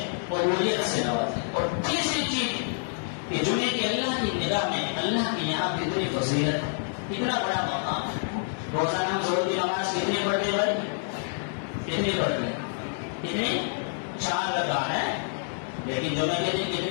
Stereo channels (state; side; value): silent; right; digital silence